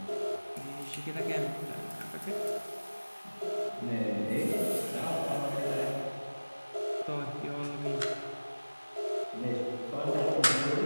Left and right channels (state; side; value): inverted; both; correlation -1.00